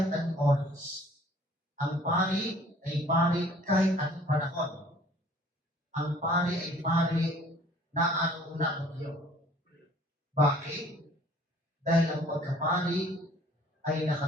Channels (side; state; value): both; normal; correlation 0.54